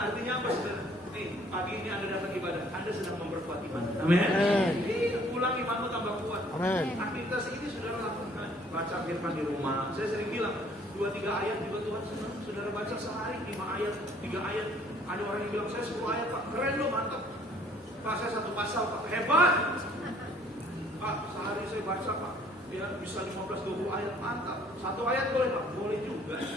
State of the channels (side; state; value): both; normal; correlation 0.59